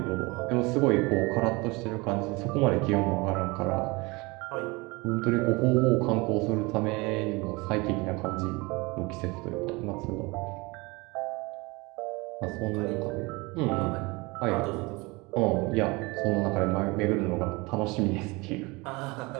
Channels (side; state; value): left; quieter; 24.9 dB